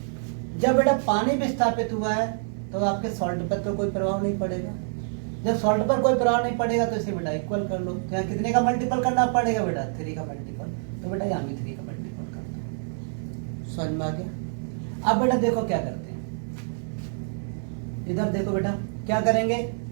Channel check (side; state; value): left; silent; digital silence